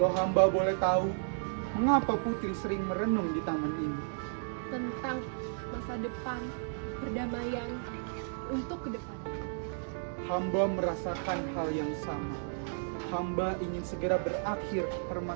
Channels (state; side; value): silent; left; digital silence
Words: Kalau hamba boleh tahu, mengapa Putri sering merenung di taman ini? Tentang masa depan, perdamaian, untuk ke depan. Hamba merasakan hal yang sama. Hamba ingin segera berakhir